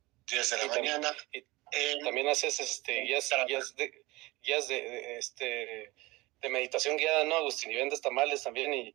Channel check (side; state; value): left; quieter; 21.6 dB